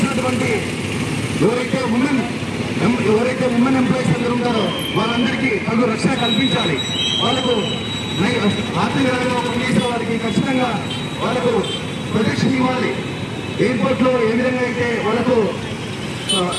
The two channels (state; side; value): identical; both; correlation 1.00